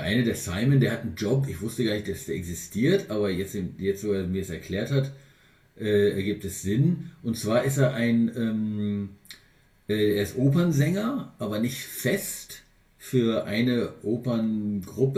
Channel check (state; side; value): identical; both; correlation 1.00